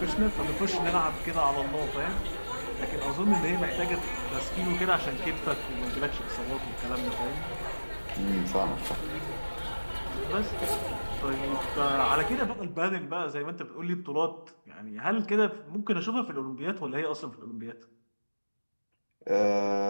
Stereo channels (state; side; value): inverted; both; correlation -1.00